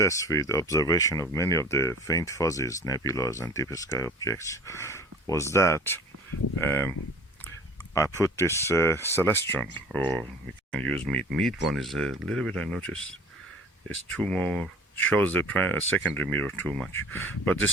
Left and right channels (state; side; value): normal; both; correlation 0.45